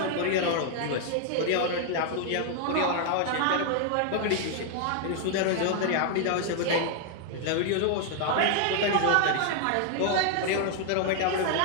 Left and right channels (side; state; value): both; different; correlation 0.00